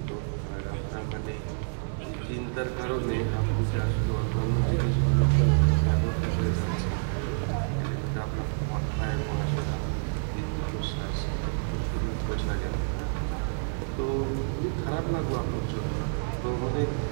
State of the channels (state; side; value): silent; left; digital silence